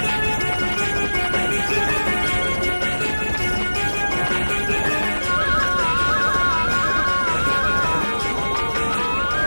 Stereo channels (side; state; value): both; inverted; correlation -1.00